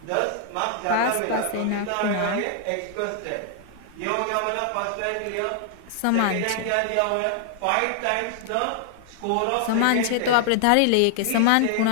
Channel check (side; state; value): both; different; correlation 0.00